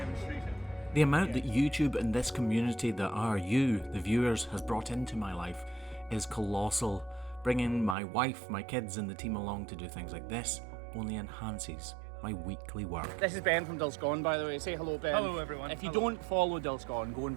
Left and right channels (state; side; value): drops out; left; at 8.0 s